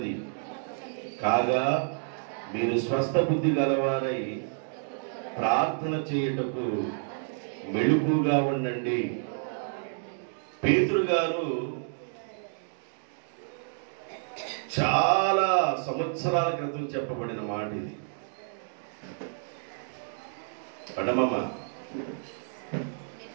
కాగా మీరు స్వస్థ బుద్ధి గలవారై ప్రార్థన చేయుటకు మెలకువగా ఉండండి. పేతురు గారు చాలా సంవత్సరాల క్రితం చెప్పబడిన మాట ఇది. పడమమ్మ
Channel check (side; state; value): left; silent; digital silence